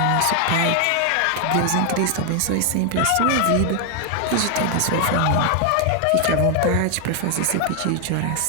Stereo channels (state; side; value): different; both; correlation 0.00